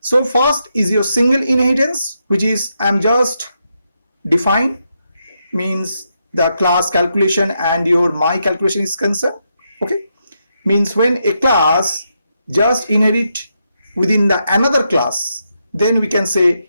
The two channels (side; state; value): both; inverted; correlation -0.82